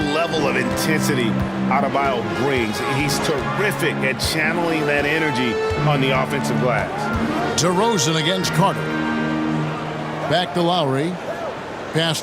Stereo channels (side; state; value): both; identical; correlation 1.00